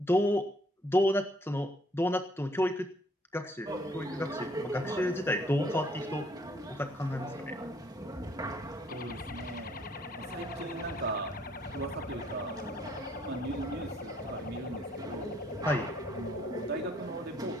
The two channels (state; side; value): normal; both; correlation 0.65